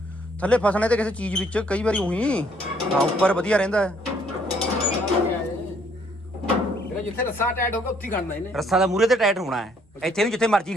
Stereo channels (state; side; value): normal; both; correlation 0.66